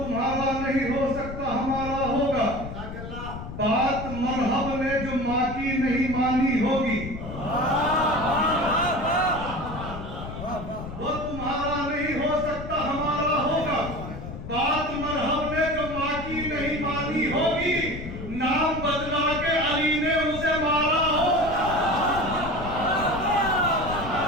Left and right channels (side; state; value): left; noise; rumble, 9 dB below the sound